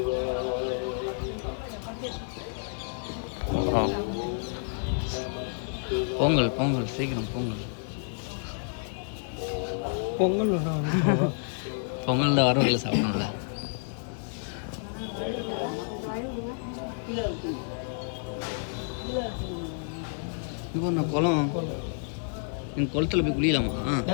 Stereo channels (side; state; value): right; silent; 58 dB below the other